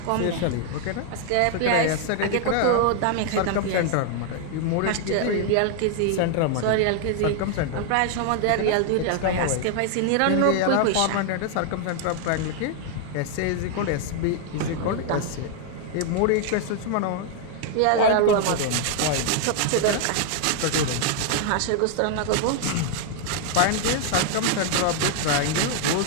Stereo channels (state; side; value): different; both; correlation 0.00